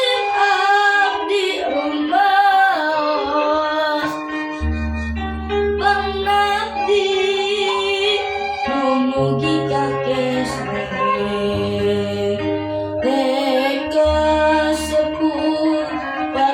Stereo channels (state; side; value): identical; both; correlation 1.00